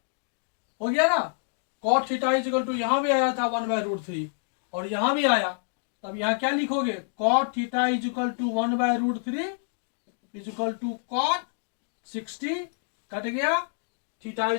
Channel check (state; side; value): silent; right; digital silence